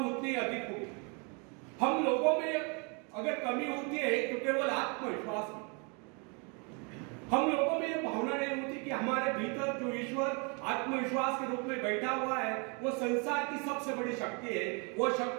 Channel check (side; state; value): left; quieter; 34.1 dB